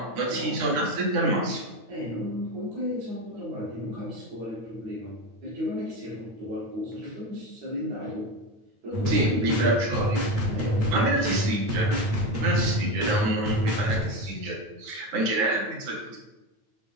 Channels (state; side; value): late; left; 9.1 ms